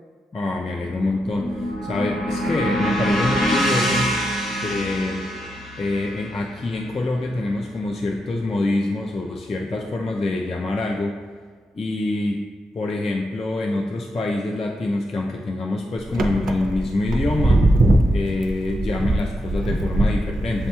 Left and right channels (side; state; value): both; normal; correlation 0.85